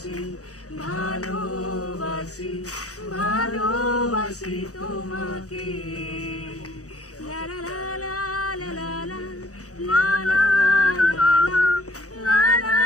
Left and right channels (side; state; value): right; late; 0.66 ms